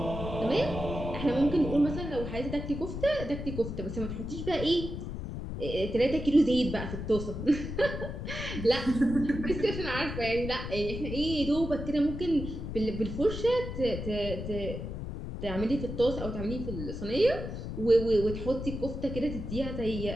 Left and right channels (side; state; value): left; noise; rumble, 6 dB below the sound